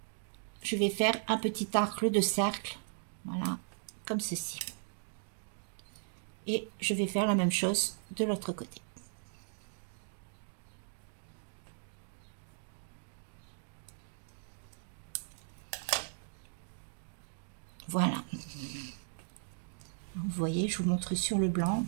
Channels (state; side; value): silent; left; digital silence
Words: Je vais faire un petit arc de cercle, voilà, comme ceci. Et je vais faire la même chose de l'autre côté. Voilà. Vous voyez, je vous montre sur le blanc.